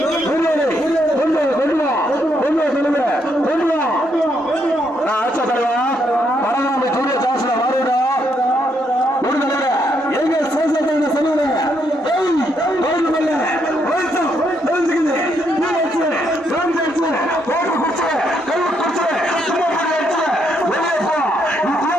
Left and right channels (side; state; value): both; normal; correlation 0.75